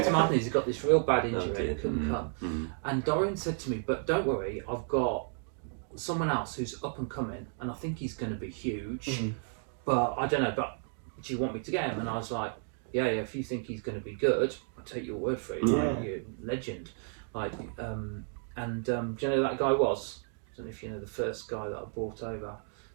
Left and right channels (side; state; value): left; silent; 56 dB below the other